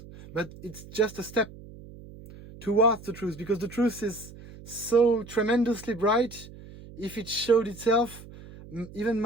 but it's just a step towards the truth, because the truth is so tremendously bright. If it showed itself, even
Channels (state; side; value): noise; right; hum, 17 dB below the sound